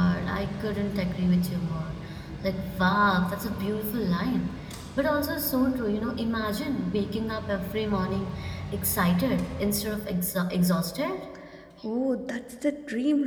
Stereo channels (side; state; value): both; identical; correlation 1.00